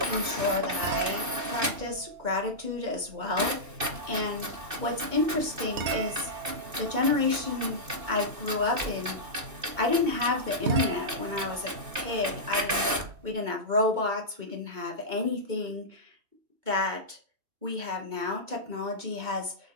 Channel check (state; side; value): late; left; 2.6 ms